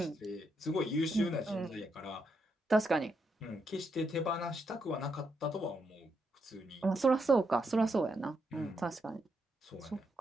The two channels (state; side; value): normal; both; correlation 0.80